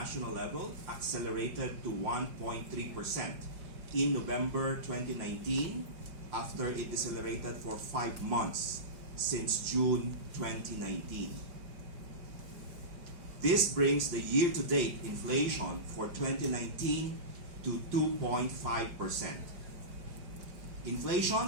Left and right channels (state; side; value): late; left; 5.7 ms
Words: level accelerated to 1.3% in November 2019 after it decelerated for 5 months since June 2019. This brings the year-to-date inflation for 2019 to 2.5%.